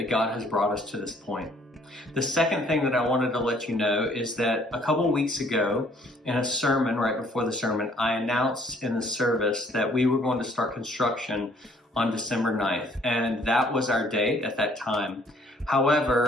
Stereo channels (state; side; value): normal; both; correlation 0.61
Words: God has brought us to this point. The second thing that I wanted to let you know is that a couple weeks ago in a sermon, right before the sermon, I announced in the service that we were going to start construction on December 9th, and that was our date at that time.